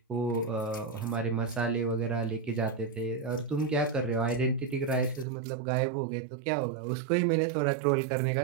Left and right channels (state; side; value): drops out; left; at 5.2 s